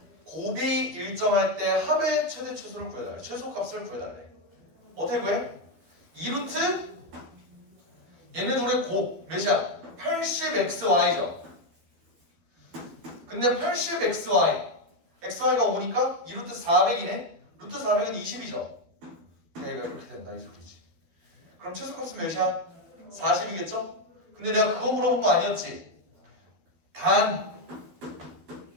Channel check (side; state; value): left; late; 12 ms